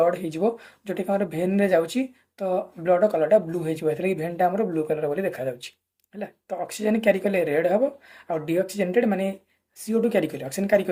हो जोटा कि भेन रे जाउची, तो ब्लड कलरटा ब्लू हो भेनटा आम ब्लू कलर बोली देखा जाउची है। तो ऑक्सीजन क्यारी कले रेड हम, आ डीऑक्सीजनेटेड माने CO2 क्यारी कले, ऑक्सीजन क्यारी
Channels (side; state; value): both; identical; correlation 1.00